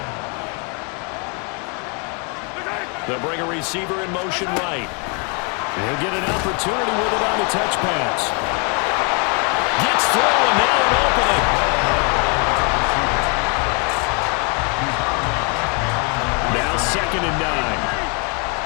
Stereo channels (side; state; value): right; quieter; 35.9 dB